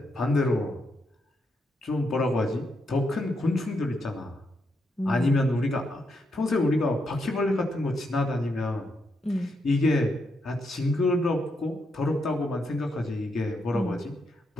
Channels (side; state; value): both; normal; correlation 0.80